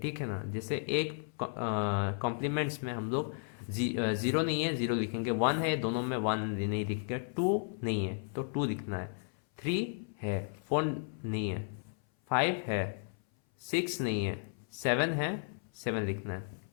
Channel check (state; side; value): silent; right; 55 dB below the other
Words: है ना। जैसे एक कॉम्प्लीमेंट्स में हम लोग ज़ीरो नहीं है, ज़ीरो लिखेंगे, वन है, दोनों में वन नहीं लिखेंगे, टू नहीं है तो टू लिखना है, थ्री है, फोर नहीं है, फाइव है, सिक्स नहीं है, सेवन है, सेवन लिखना है,